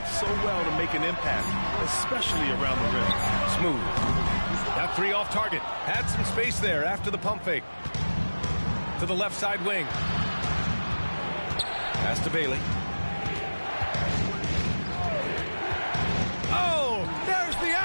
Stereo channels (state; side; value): inverted; both; correlation -1.00